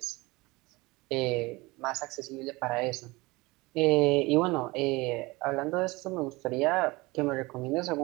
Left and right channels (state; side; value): quieter; left; 22.7 dB